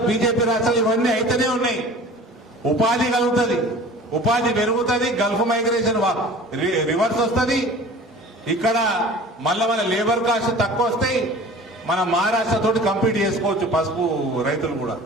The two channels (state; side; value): normal; both; correlation 0.43